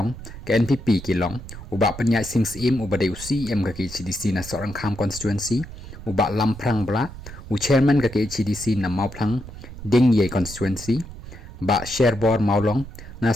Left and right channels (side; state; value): right; noise; rumble, 13 dB below the sound